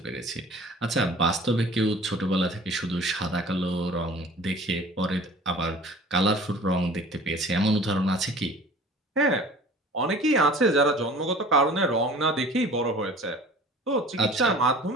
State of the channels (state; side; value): normal; both; correlation 0.45